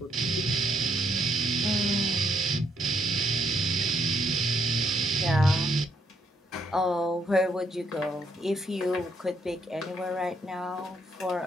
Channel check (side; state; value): both; normal; correlation 0.74